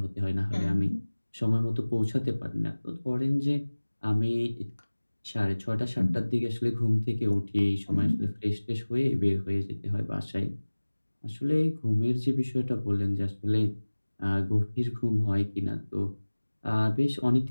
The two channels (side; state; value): both; inverted; correlation -1.00